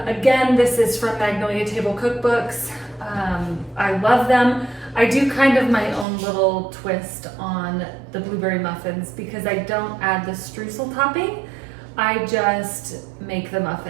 Again, this is from Magnolia Table Cookbooks. I love them. I do kind of my own little twist on the blueberry muffins because I don't add the streusel topping. I just make the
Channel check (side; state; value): left; drops out; at 6.1 s